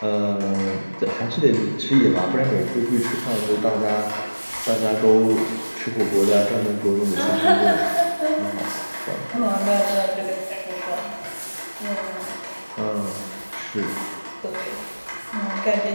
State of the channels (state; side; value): inverted; both; correlation -1.00